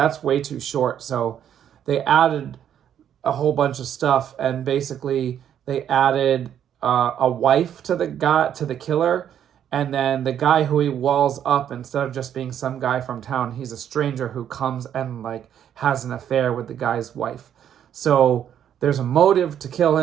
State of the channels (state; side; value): quieter; left; 9.7 dB